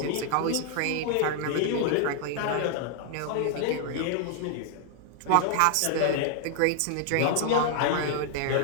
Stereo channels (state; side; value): different; both; correlation 0.00